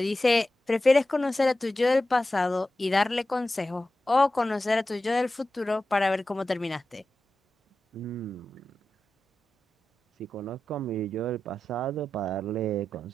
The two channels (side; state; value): both; normal; correlation 0.93